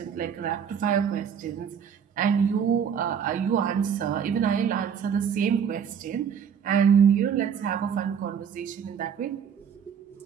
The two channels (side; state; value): left; quieter; 7.5 dB